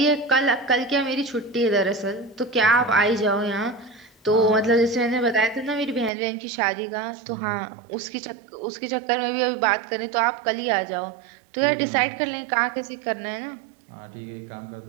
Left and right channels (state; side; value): drops out; left; at 6.1 s